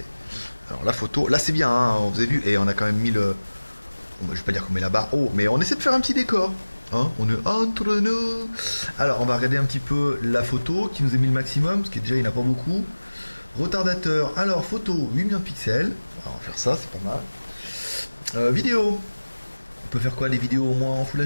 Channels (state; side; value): inverted; both; correlation -1.00